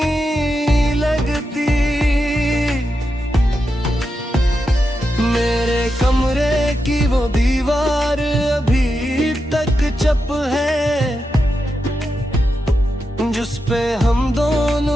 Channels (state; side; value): normal; both; correlation 0.87